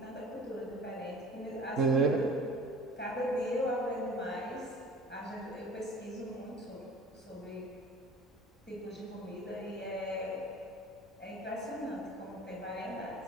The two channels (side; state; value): both; normal; correlation 0.43